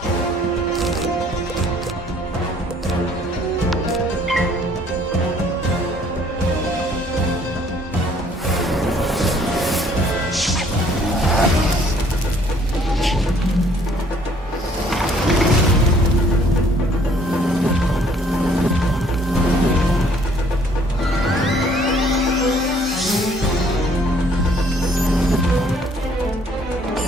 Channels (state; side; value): normal; both; correlation 0.61